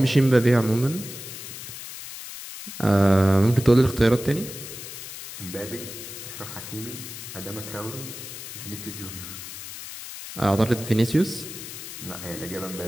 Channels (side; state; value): left; noise; hiss, 11 dB below the sound